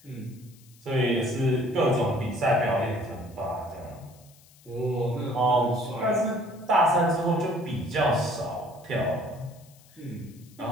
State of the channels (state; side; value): noise; left; hiss, 27 dB below the sound